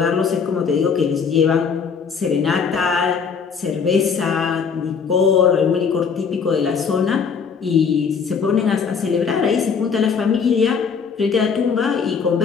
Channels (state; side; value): quieter; right; 6.1 dB